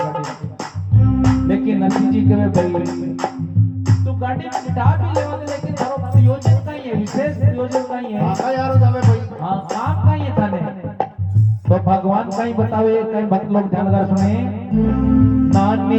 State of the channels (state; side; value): identical; both; correlation 1.00